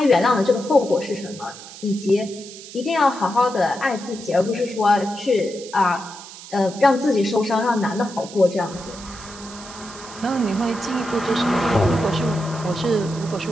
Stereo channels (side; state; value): right; noise; hiss, 15 dB below the sound